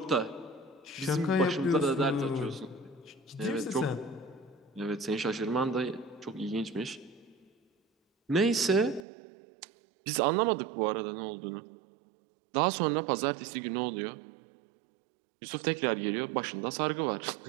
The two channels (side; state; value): left; drops out; at 9.1 s